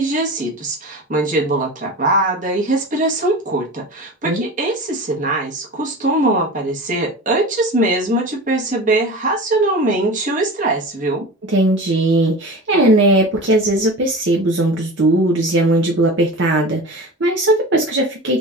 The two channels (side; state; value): both; normal; correlation 0.32